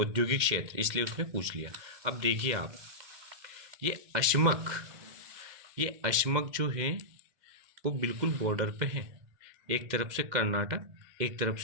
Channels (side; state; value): left; late; 2.1 ms